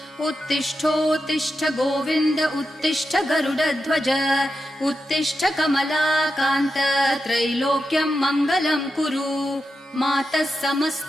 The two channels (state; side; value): normal; both; correlation 0.88